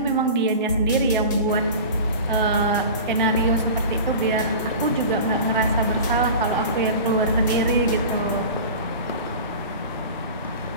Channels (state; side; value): inverted; both; correlation -0.35